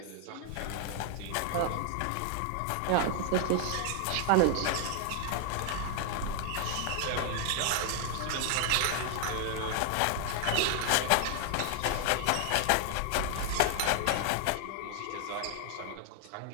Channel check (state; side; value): different; both; correlation 0.00